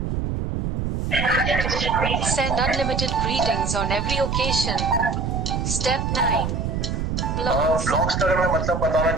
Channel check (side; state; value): right; noise; rumble, 1 dB below the sound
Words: Send unlimited greetings on every occasion. Step 9. Blogs. Blogs का अगर मैं मतलब बताना